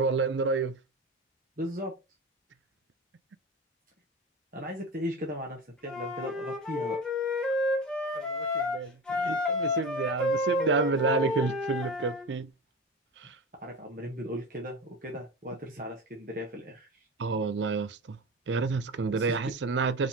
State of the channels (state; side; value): normal; both; correlation 0.27